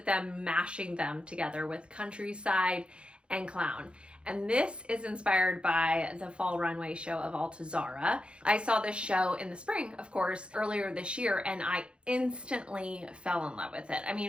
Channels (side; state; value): left; late; 0.057 ms